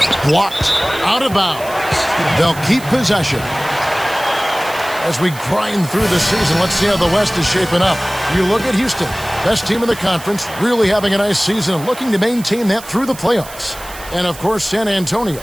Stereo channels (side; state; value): right; noise; hiss, 16 dB below the sound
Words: Blocked. Out of bounds. They'll keep possession. As we grind through the season, let's see how the West is shaping up. You look at Houston, best team in the conference, really having a nice season and looking to maintain that through the playoffs. And, of course, San Antonio,